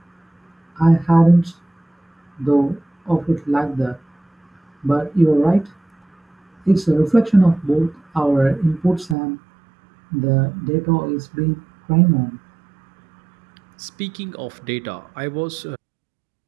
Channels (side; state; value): left; drops out; at 9.2 s